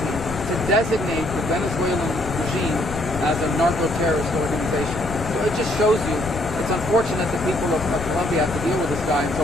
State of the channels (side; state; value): left; noise; rumble, 11 dB below the sound